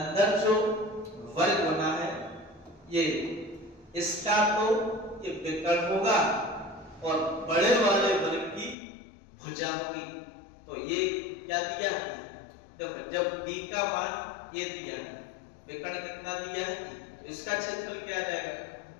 जो वर्ग बना है ये इसका तो ये विकर्ण होगा और बड़े वाले वर्ग की भुजा होगी। तो ये क्या दिया है? देखो जब d का मान ये दिया है विकर्ण कितना दिया है, तो इसका क्षेत्रफल क्या आ जाएगा,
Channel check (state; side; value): drops out; right; at 8.8 s